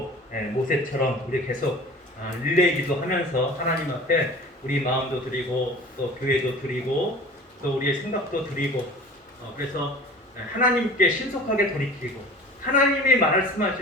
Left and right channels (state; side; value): normal; both; correlation 0.41